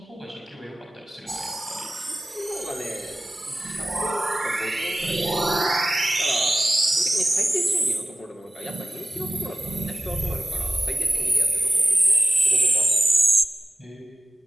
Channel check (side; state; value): both; normal; correlation 0.95